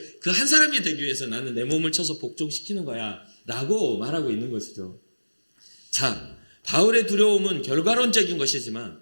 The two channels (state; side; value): inverted; both; correlation -1.00